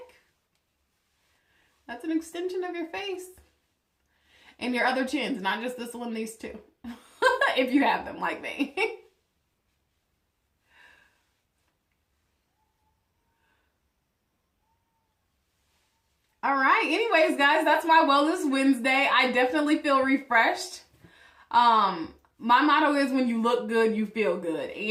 That's an extension of your face. And your other chins, not just this one, these two. If you have them like me. All right. Anyways, guys, that's my Wellness Wednesday. I definitely feel refreshed. My motto is when you look good, you feel good.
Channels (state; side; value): identical; both; correlation 1.00